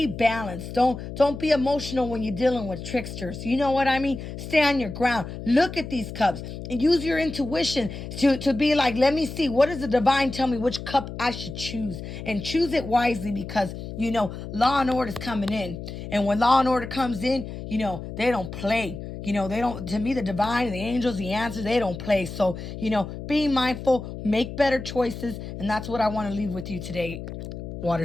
balanced. Don't be emotional when you're dealing with tricksters. You know what I mean? Stay on your ground. Look at these cups and use your intuition to be like, let me see, what does the divine tell me which cup I should choose? And choose it wisely, because law and order is coming in. And when law and order comes in, they don't play. They don't, to me, the divine, the angels, the answers, they don't play. So, be mindful, make better choices. And that's what I want to leave with you today,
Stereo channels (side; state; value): left; noise; hum, 9 dB below the sound